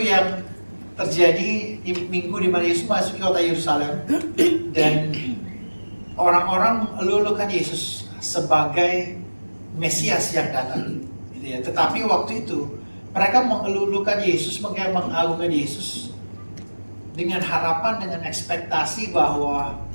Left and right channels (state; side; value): inverted; both; correlation -1.00